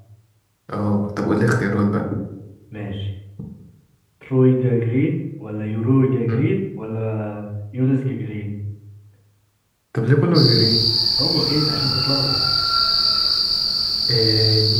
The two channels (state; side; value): identical; both; correlation 1.00